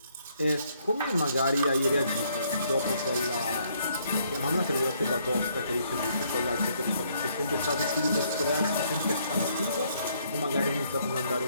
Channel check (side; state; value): both; inverted; correlation -0.69